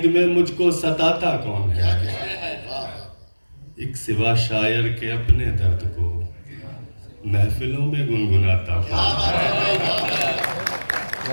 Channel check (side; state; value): both; inverted; correlation -1.00